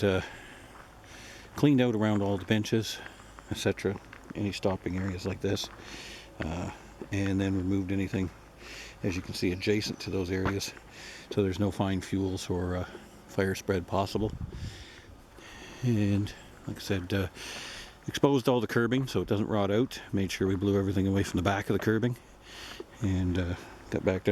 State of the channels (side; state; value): both; identical; correlation 1.00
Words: cleaned out around all the benches, etc., any stopping areas like this, and then removed anything, as you can see, adjacent to those areas, so there's no fine fuels or fire spread possible. And like I said, exposed all the curbing so it doesn't rot out, made sure we blew everything away from the back of the curbing, and got back